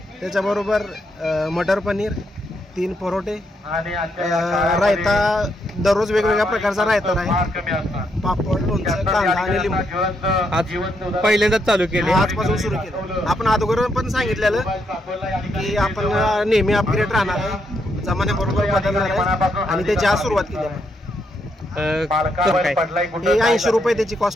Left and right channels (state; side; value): normal; both; correlation 0.78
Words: त्याच्याबरोबर मटर पनीर, 3 परोठे, रायता, दररोज वेगवेगळ्या प्रकारचा रायता आहे, पापड, लोणचं, कांदा आणि लिंबू. आज पहिल्यांदाच चालू केले, आजपासून सुरू केलं. आपण अगोदर पण सांगितलेलं की आपण नेहमी अपग्रेड राहणार आहे, जमान्याबरोबर बदलणार आहे आणि त्याची आज सुरुवात केली आपण. हे 80 रुपये त्याची